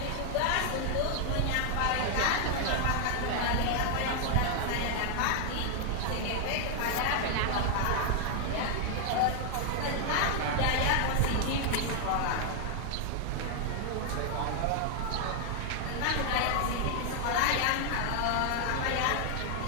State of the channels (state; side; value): different; both; correlation 0.00